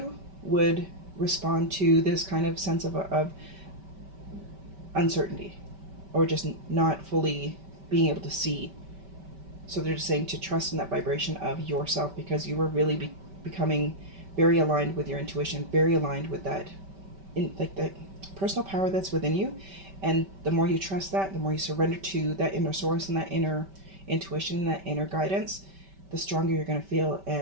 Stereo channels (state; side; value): late; left; 5.2 ms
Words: would respond to this kind of sense of uncertainty, or just not fully being able to see. So they're just saying to trust in that vibration of yourself, because you were really becoming very aligned with your intuition, very aligned with that, like that personal power that's within you. And the more you trust that, the more you surrender to that inner source and that inner intuition and that inner guidance, the stronger you're going to feel,